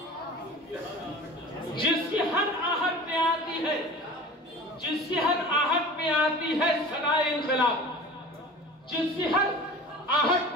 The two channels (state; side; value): normal; both; correlation 0.39